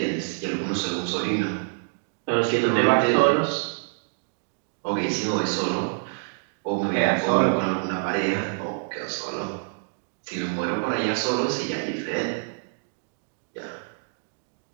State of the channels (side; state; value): left; silent; 61 dB below the other